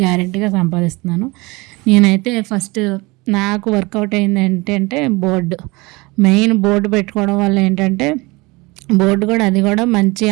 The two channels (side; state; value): left; quieter; 24.1 dB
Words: గ్యారెంటీగా సంపాదిస్తున్నాను. నేనైతే ఫస్ట్ నాకు వర్కౌట్ అయింది ఏంటంటే మెయిన్ బోర్డు పెట్టుకోవడం వల్ల ఏంటంటే బోర్డు కూడా అది కూడా మంచి